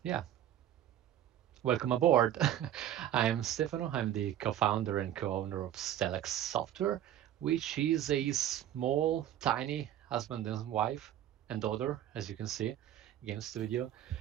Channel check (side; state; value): left; quieter; 11.5 dB